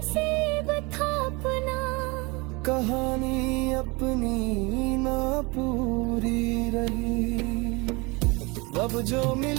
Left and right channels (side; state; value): left; quieter; 26.7 dB